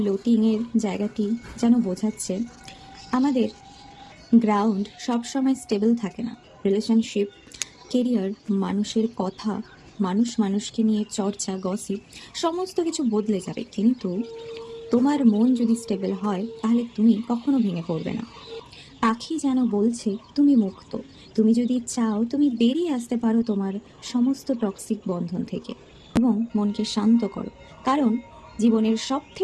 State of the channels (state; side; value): identical; both; correlation 1.00